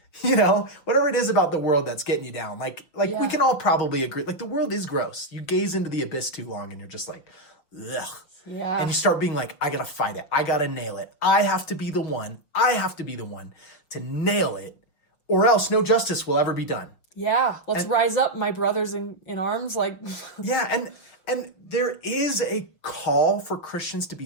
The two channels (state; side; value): late; right; 6.1 ms